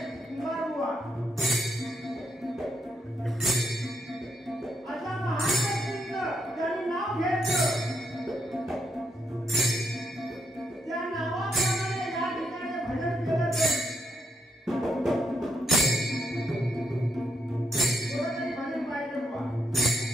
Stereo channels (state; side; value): normal; both; correlation 0.78